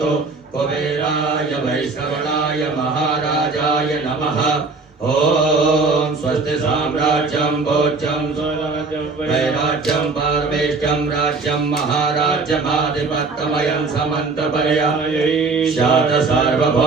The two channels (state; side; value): quieter; left; 4.0 dB